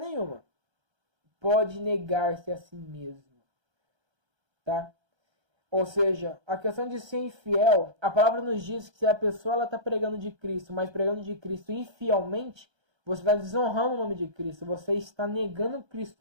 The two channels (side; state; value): left; late; 1.3 ms